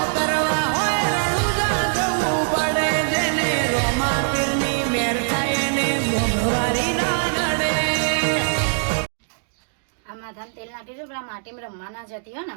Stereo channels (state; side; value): silent; left; digital silence